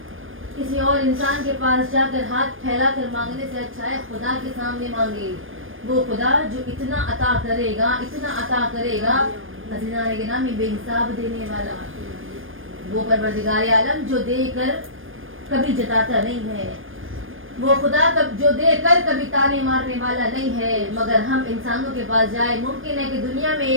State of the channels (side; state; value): left; late; 0.59 ms